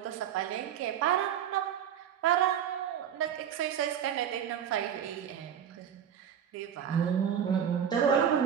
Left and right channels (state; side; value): quieter; left; 9.0 dB